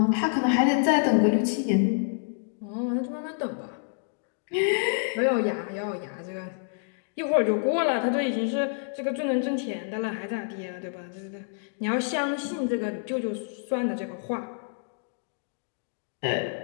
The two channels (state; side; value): silent; right; digital silence